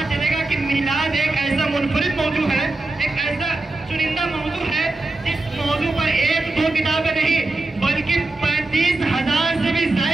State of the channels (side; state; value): left; quieter; 3.1 dB